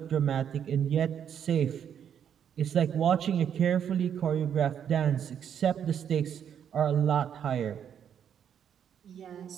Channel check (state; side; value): quieter; left; 8.7 dB